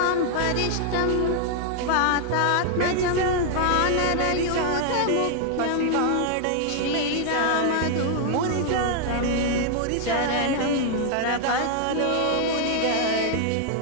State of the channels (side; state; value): both; different; correlation 0.00